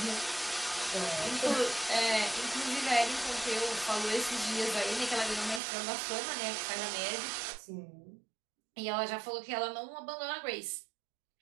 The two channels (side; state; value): left; drops out; at 5.6 s